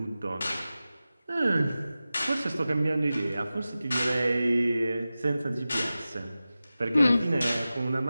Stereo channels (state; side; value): inverted; both; correlation -0.95